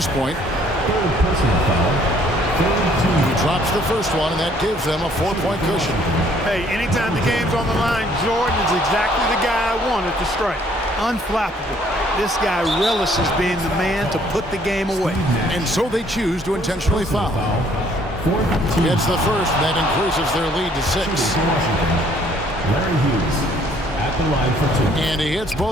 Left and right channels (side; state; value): both; normal; correlation 0.62